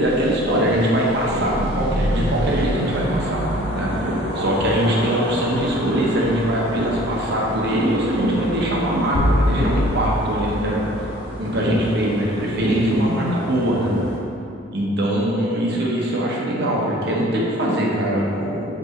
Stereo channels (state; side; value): normal; both; correlation 0.51